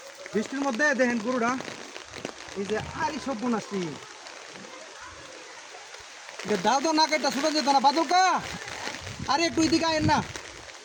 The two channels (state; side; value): identical; both; correlation 1.00